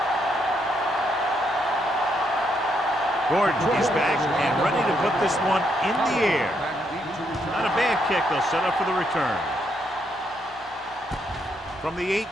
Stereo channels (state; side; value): normal; both; correlation 0.76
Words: Gordon is back and ready to put this one in the air. Not a bad kick. They'll set up for the return. From the